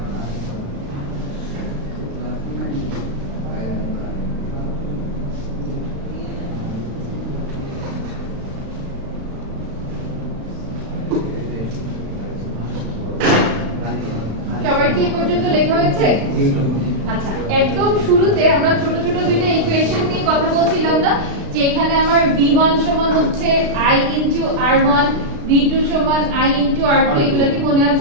সবার কি এই পর্যন্ত লেখা হয়েছে? আচ্ছা, একদম শুরুতে আমরা ছোট ছোট দুইটা ইকুয়েশন নিয়ে কথা বলছিলাম না, যে এখানে আমার V1 সমান হচ্ছে I into R1, V2 সমান I into R2, এগুলা কি মনে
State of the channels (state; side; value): late; left; 36 ms